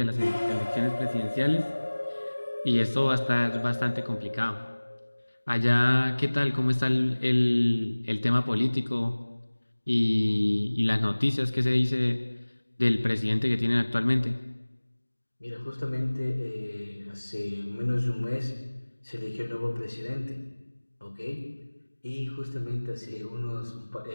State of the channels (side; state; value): both; inverted; correlation -1.00